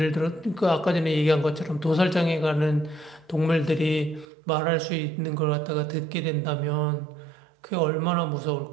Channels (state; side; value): drops out; left; at 4.2 s